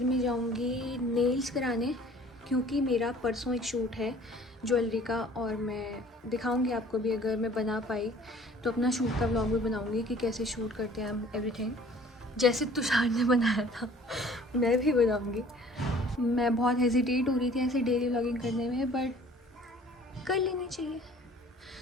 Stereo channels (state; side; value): normal; both; correlation 0.52